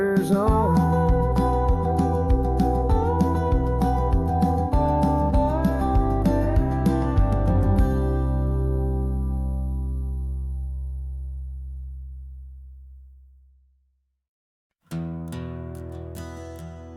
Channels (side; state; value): both; identical; correlation 1.00